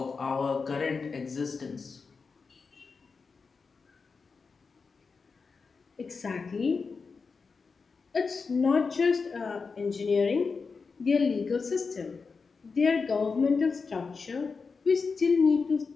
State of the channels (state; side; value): quieter; right; 4.8 dB